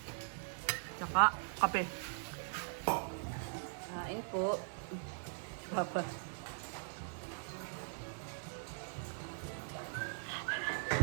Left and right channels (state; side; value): silent; left; digital silence